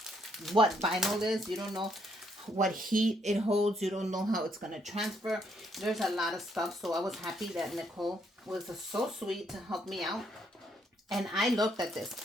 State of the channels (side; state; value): both; normal; correlation 0.72